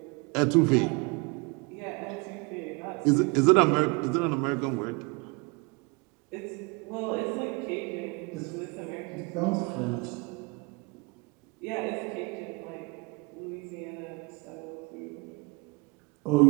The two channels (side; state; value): left; quieter; 28.8 dB